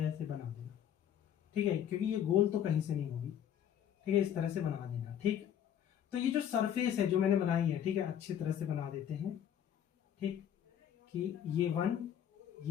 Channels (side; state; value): right; quieter; 9.7 dB